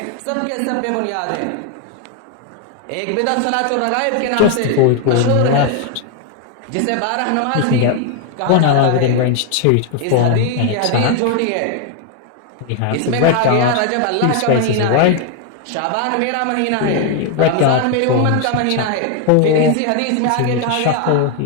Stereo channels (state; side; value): different; both; correlation 0.01